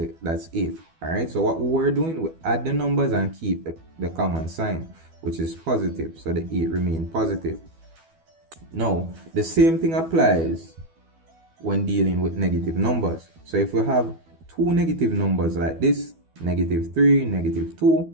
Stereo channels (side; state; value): left; late; 12 ms